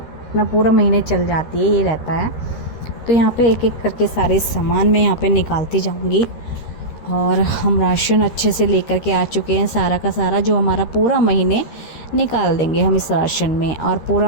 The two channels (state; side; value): late; right; 13 ms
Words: पूरा महीने चल जाती है, ये रहता है। तो यहाँ पे एक एक करके सारे सामान मैं यहाँ पे निकालती जाऊँगी। और हम राशन अच्छे से लेकर के आ चुके हैं, सारा का सारा जो हमारा पूरा महीने निकाल देंगे हम इस राशन में, और